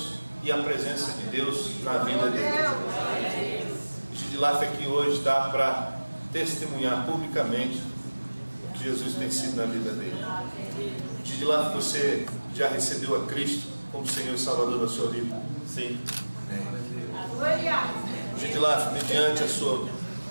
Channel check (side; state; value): both; inverted; correlation -1.00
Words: e a presença de Deus na vida dele. Edilaf aqui hoje está para testemunhar publicamente o que Jesus tem sido na vida dele. Edilaf, você já recebeu a Cristo como Senhor e Salvador da sua vida? Sim. Gidilaf, mediante a sua